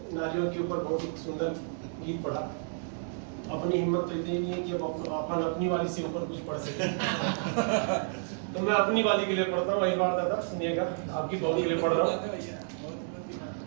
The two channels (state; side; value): silent; left; digital silence